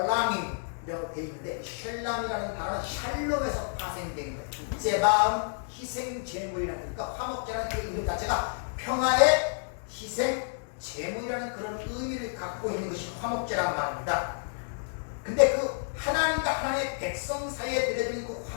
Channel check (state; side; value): silent; right; digital silence